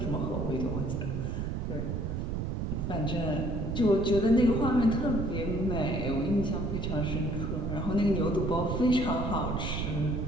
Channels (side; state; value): right; noise; rumble, 2 dB below the sound